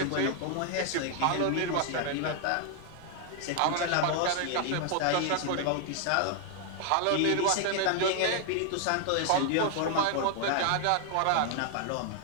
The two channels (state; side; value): different; both; correlation 0.00